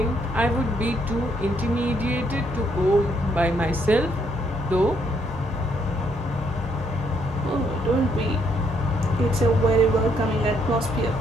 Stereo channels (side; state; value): both; normal; correlation 0.72